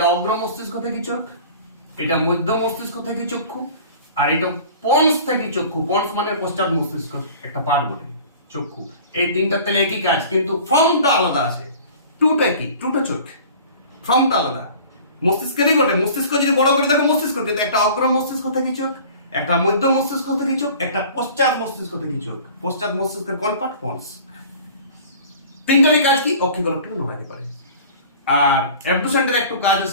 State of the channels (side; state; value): both; inverted; correlation -0.44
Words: অগ্র মস্তিষ্ক থেকে চোখ, এটা মধ্য মস্তিষ্ক থেকে চক্ষু, আর এটা পন্স থেকে চক্ষু। পন্স মানে পশ্চাৎ মস্তিষ্ক একটা পার্ট বটে, চক্ষু। এই তিনটা তাহলে একই কাজ, কিন্তু ফর্মটা আলাদা আছে। টুটা কি? টুটা চোখ, ফর্মটা আলাদা। মস্তিষ্কেরই বটে। মস্তিষ্ক যদি বড় করে দেখো মস্তিষ্ক, কিন্তু একটা অগ্র মস্তিষ্ক থেকে চোখ, একটা মধ্য মস্তিষ্ক থেকে চোখ, একটা পশ্চাৎ মস্তিষ্ক থেকে চোখ। পশ্চাৎ মস্তিষ্কের কোন পার্ট? পন্স। তিনটারই কাজ কি? অক্ষিগোলকটাকে নড়াতে পারে। আর অ্যাবডুসেন্টের একটু কাজ